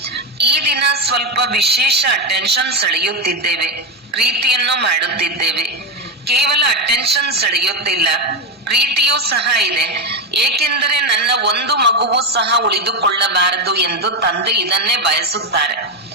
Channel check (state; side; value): normal; both; correlation 0.09